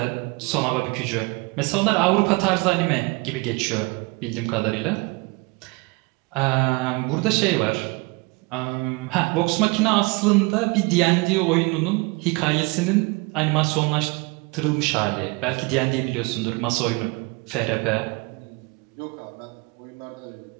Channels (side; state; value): left; quieter; 27.1 dB